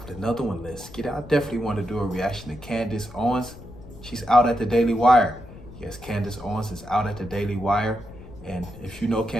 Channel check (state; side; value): noise; left; rumble, 17 dB below the sound